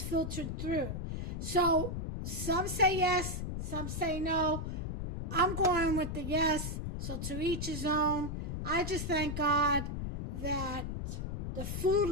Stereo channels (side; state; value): left; noise; rumble, 4 dB below the sound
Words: filtered through. So some say yes, some say no. I'm going with the yes, so to each his own. I just thank God that the food